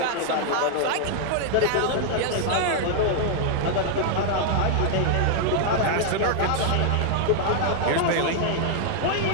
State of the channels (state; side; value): different; both; correlation 0.00